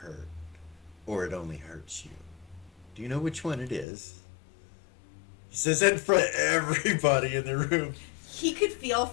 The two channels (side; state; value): right; drops out; at 3.9 s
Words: or it only hurts you. Do you know which one it is? He says that in front of everybody in the room. He could feel